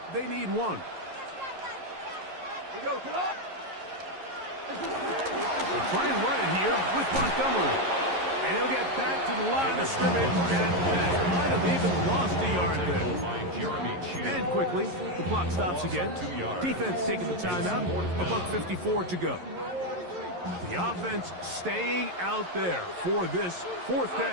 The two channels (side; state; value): left; late; 11 ms